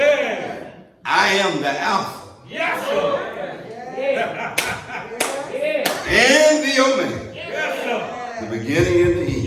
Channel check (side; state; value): both; identical; correlation 1.00